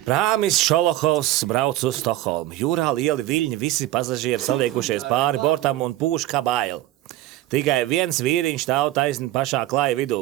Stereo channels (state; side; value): quieter; left; 15.3 dB